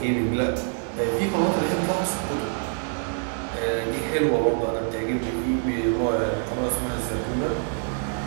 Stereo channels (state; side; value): silent; left; 57 dB below the other